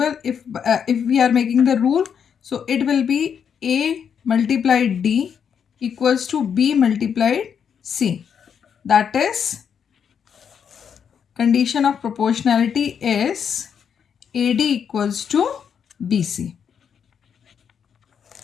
if we are making the rule, so it will be A multiplied D equals to B multiplied C. That is, condition of proportionality is AD equals to BC.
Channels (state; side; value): quieter; right; 7.5 dB